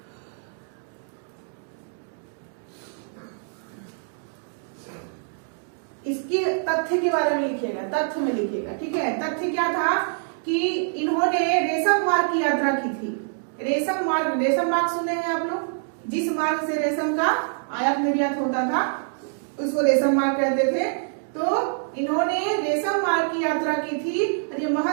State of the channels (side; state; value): left; silent; digital silence